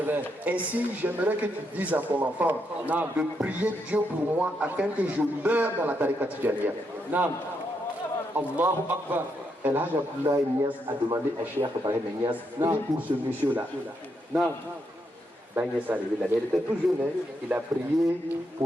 Ainsi, j'aimerais que tu dises à ton enfant Non. de prier Dieu pour moi afin que je meure dans la tariqa Tijaniya. Naam. Allahu Akbar. El Hajj Abdullah Nias a demandé à Cheikh Ibrahim Nias, Non. prie pour ce monsieur-là. Naam. Ben Nias est arrivé là, mais il était tout jeune, hein. Il a prié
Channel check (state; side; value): normal; both; correlation 0.80